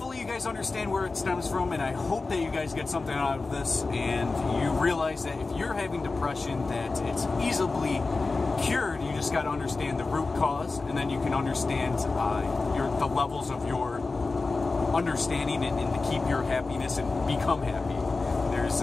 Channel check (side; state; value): right; quieter; 3.8 dB